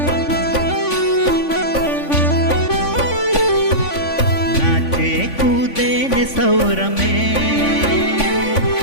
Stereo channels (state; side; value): late; right; 3.5 ms